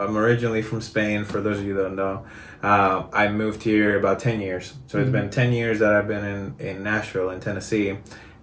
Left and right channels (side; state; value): both; identical; correlation 1.00